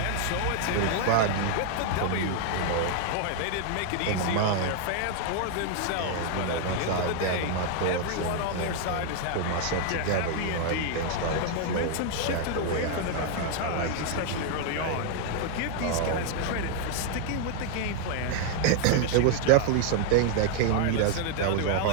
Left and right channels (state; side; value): different; both; correlation 0.00